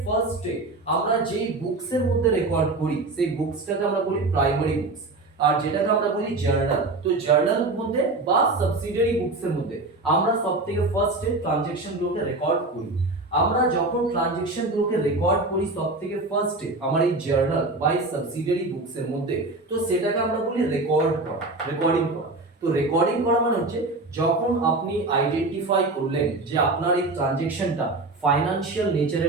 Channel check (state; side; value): quieter; left; 3.1 dB